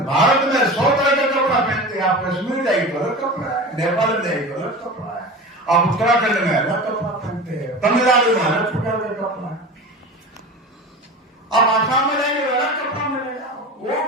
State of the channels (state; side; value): normal; both; correlation 0.31